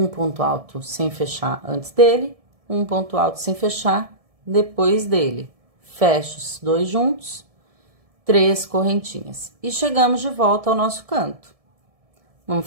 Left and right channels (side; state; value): left; late; 1.7 ms